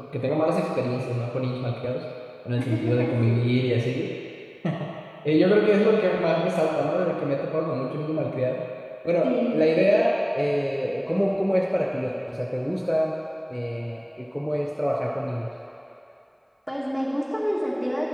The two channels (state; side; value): identical; both; correlation 1.00